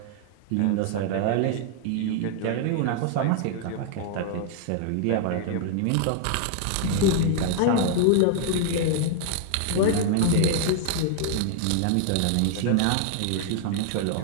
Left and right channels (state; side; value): different; both; correlation 0.00